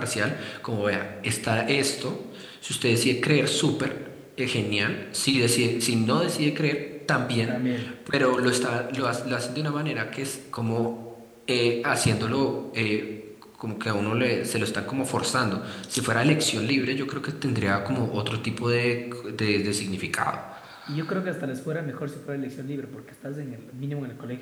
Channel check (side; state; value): both; identical; correlation 1.00